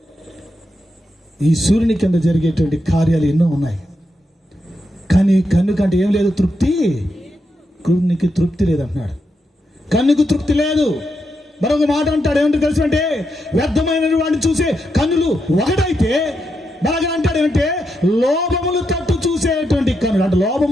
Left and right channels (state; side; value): normal; both; correlation 0.84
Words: ఈ సూర్యుని కింద జరిగేటువంటి కార్యాలు ఎన్నో ఉన్నాయి, కానీ కన్ను కంటే ఏం లేదు? తృప్తి. కన్నుకి తృప్తి లేదంటున్నాడు. కన్నుకు తృప్తి లేదు. మరొక మాట అంటాడు, ఏమంటే తెలుసు అంటే, వ్యర్థమైన వాడిని చూసే కన్నులు ఒకటైతే బాగా అంటాడు ఏమంటే, లోభములు తట్టు చూసేటువంటి కన్నులు అంటే,